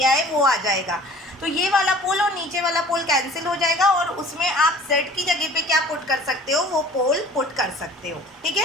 है वो आ जाएगा। तो ये वाला पोल और नीचे वाला पोल कैंसिल हो जाएगा और उसमें आप z की जगह पे क्या पुट कर सकते हो, वो पोल पुट कर सकते हो। ठीक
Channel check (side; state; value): both; normal; correlation 0.48